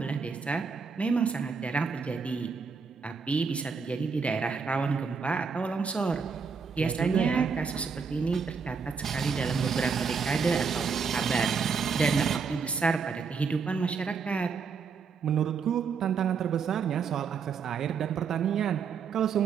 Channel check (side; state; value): left; quieter; 5.6 dB